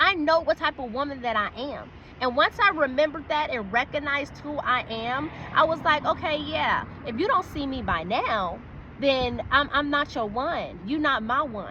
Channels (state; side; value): identical; both; correlation 1.00